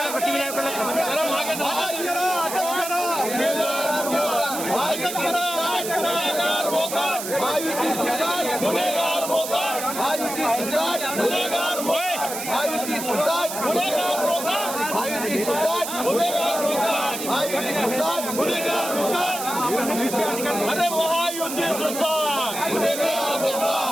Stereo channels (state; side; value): noise; right; hiss, 7 dB below the sound